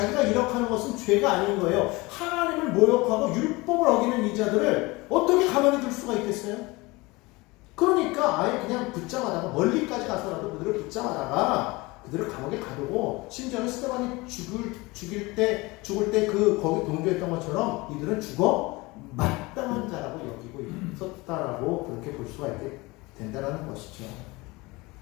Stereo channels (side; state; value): right; quieter; 23.2 dB